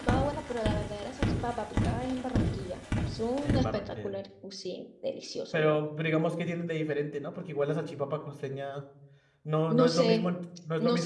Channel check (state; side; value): identical; both; correlation 1.00